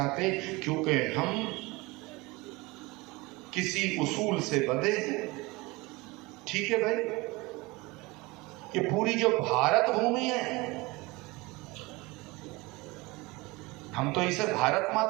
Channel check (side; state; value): left; quieter; 23.4 dB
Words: क्योंकि हम किसी उसूल से बंधे हैं। ठीक है भाई, ये पूरी जो भारत भूमि है, हम तो इसे भारत